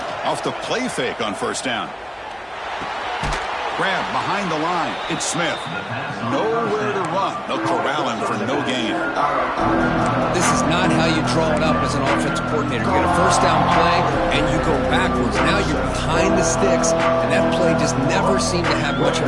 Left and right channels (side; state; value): both; identical; correlation 1.00